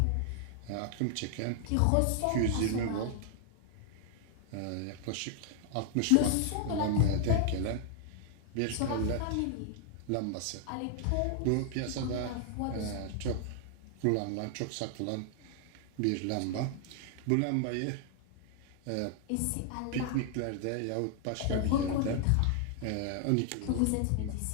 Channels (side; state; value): both; different; correlation 0.00